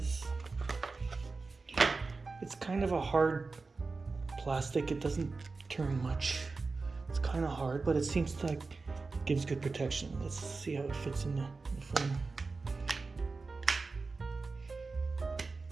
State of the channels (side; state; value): left; quieter; 4.0 dB